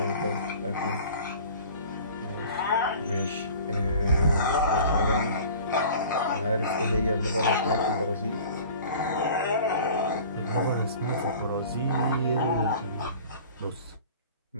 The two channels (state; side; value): inverted; both; correlation -0.43